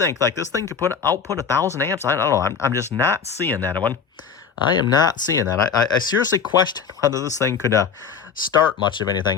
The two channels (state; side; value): quieter; right; 6.5 dB